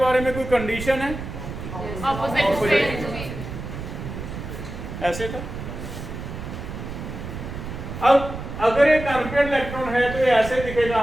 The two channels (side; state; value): right; noise; rumble, 8 dB below the sound